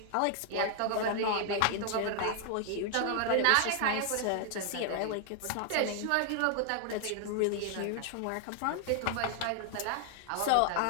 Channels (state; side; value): different; both; correlation 0.00